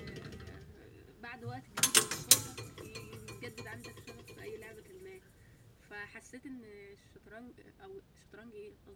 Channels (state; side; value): identical; both; correlation 1.00